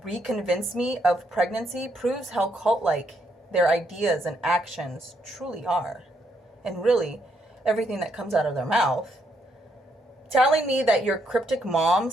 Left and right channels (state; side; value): normal; both; correlation 0.75